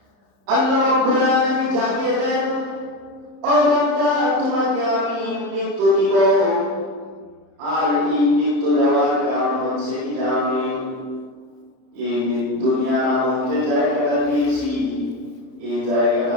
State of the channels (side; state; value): left; late; 30 ms